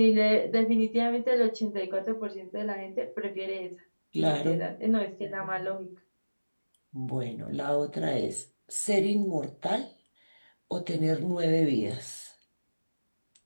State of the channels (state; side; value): inverted; both; correlation -1.00